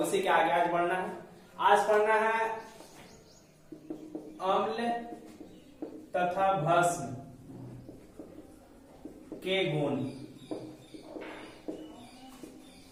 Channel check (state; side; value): identical; both; correlation 1.00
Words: के आगे आज बढ़ना है। आज पढ़ना है अम्ल तथा भस्म के गुण।